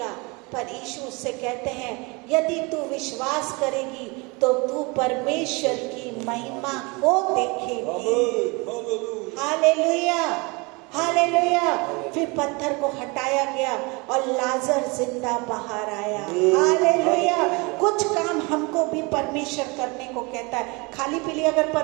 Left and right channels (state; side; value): quieter; left; 27.7 dB